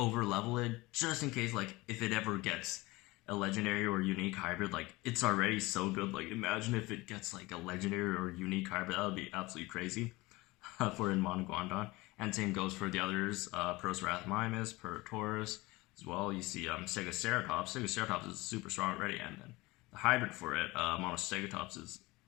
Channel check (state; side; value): quieter; right; 21.6 dB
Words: level it, just in case, like, if it ever gets a legendary or unique hybrid, like, it's already so good. Like, imagine if it gets like a legendary or unique hybrid. That would be absolutely crazy for Edmontoguanadon. And same goes for the others, Procerathomimus, Purosaurus as well. You see Stegoceratops. Stegoceratops is super strong already, and then the hybrid for it, Monostegotops, is